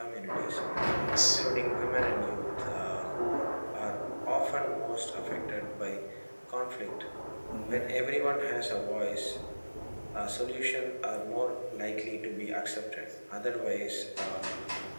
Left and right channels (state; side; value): inverted; both; correlation -1.00